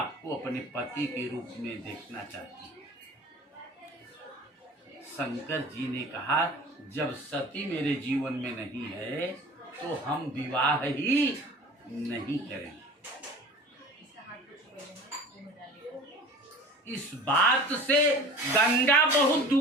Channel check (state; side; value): normal; both; correlation 0.41